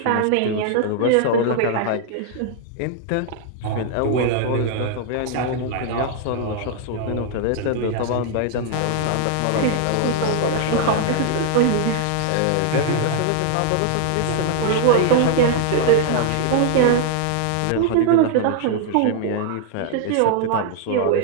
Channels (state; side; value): different; both; correlation 0.00